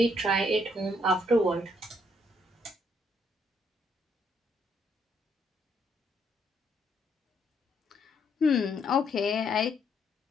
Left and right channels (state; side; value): normal; both; correlation 0.72